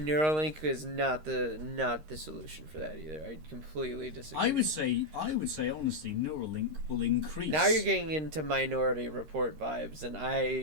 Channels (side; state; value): left; late; 13 ms